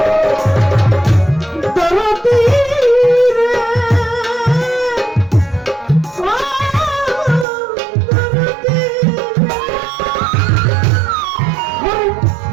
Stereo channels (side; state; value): left; drops out; at 7.5 s